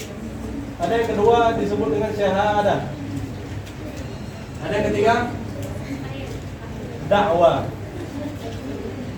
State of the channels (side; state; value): both; identical; correlation 1.00